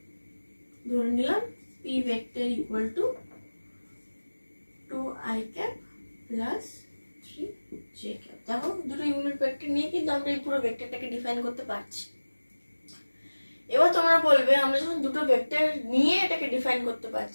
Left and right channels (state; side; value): inverted; both; correlation -1.00